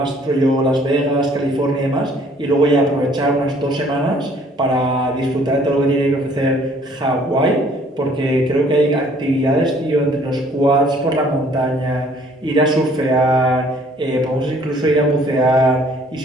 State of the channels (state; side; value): normal; both; correlation 0.58